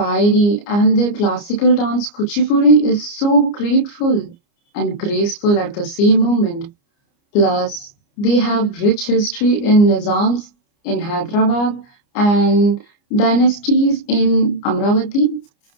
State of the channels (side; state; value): right; late; 29 ms